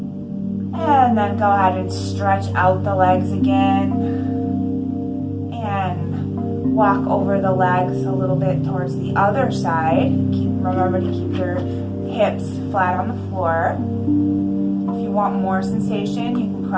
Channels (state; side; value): identical; both; correlation 1.00